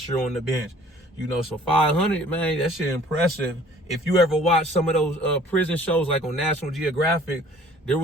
year on the bench, you know, so 500, man, that shit impressive. If you ever watch some of those prison shows like on National Geographic, there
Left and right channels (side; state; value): both; normal; correlation 0.53